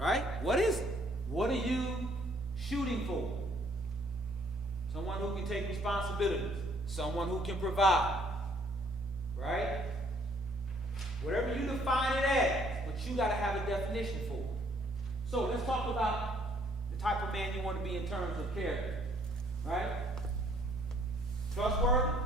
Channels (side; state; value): both; normal; correlation 0.64